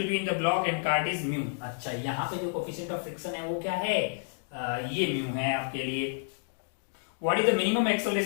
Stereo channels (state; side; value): silent; right; digital silence